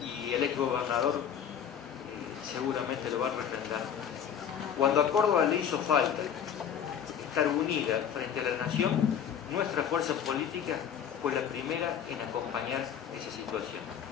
y el exgobernador seguramente lo va a refrendar, cuando a Córdoba le hizo falta estar unida frente a la nación, nuestra fuerza política fue la primera en acompañar esa situación.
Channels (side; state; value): right; quieter; 8.5 dB